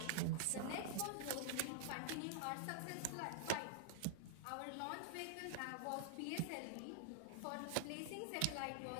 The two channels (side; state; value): both; different; correlation -0.01